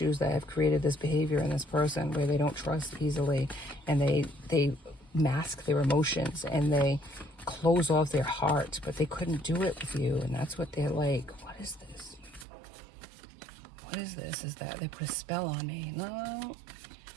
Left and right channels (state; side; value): drops out; left; at 12.5 s